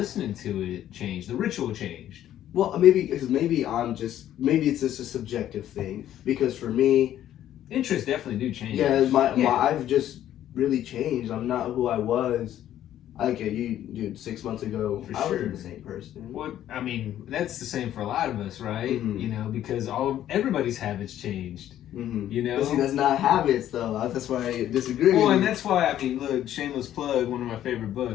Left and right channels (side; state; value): right; quieter; 11.8 dB